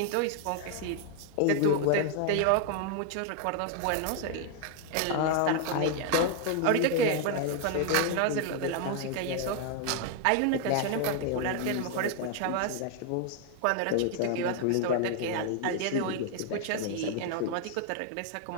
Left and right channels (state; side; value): different; both; correlation 0.00